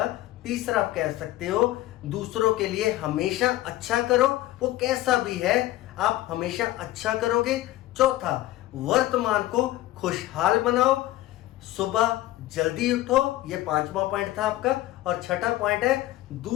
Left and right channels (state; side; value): quieter; right; 16.0 dB